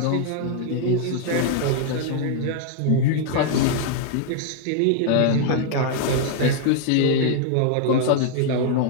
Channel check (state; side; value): different; both; correlation 0.00